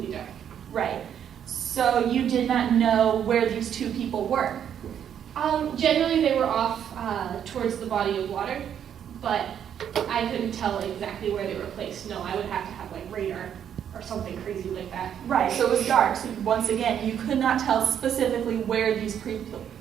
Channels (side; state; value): left; quieter; 9.1 dB